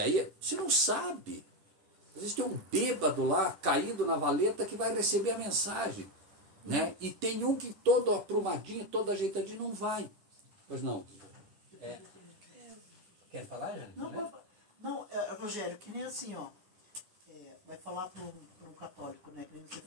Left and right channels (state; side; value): late; left; 10 ms